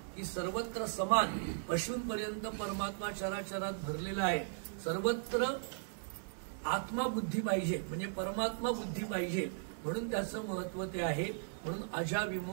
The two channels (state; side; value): silent; left; 53 dB below the other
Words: की सर्वत्र समान पशूंपर्यंत परमात्मा चराचरात भरलेला आहे. सर्वत्र आत्मा बुद्धी पाहिजे म्हणजे परमात्मा बुद्धी पाहिजे, म्हणून त्याचं महत्व ते आहे. म्हणून